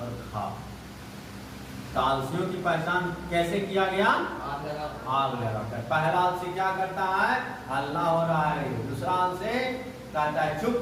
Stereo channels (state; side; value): identical; both; correlation 1.00